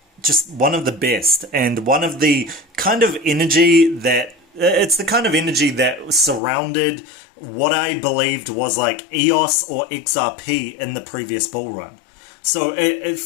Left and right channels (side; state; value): right; drops out; at 6.4 s